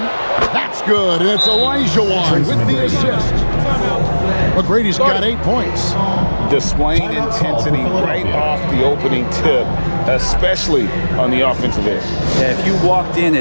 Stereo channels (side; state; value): both; inverted; correlation -1.00